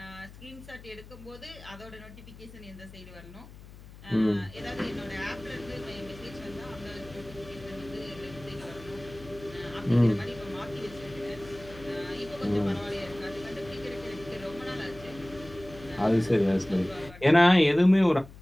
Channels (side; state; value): left; noise; hum, 18 dB below the sound